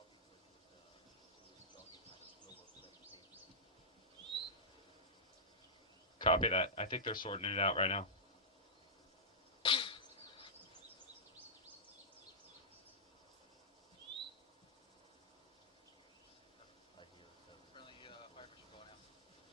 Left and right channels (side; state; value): both; normal; correlation -0.15